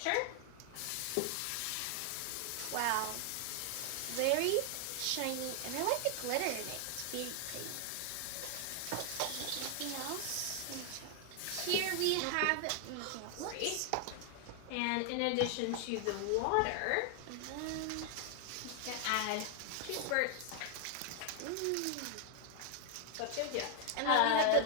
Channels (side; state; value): both; different; correlation 0.00